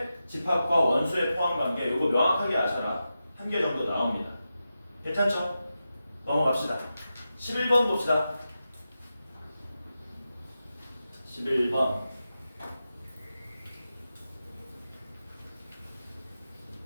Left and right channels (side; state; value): both; inverted; correlation -0.91